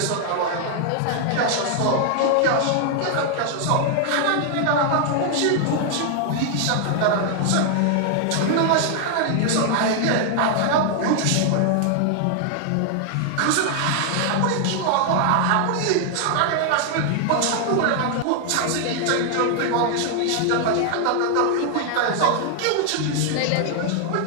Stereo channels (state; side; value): different; both; correlation 0.00